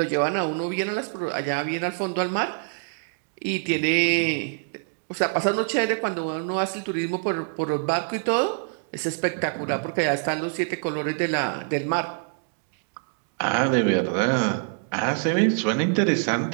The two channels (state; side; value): silent; left; digital silence